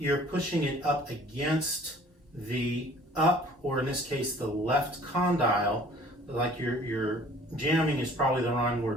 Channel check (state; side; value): normal; both; correlation 0.51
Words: pushing it up against the or in this case, the left condyle. Like you're jamming is probably the wrong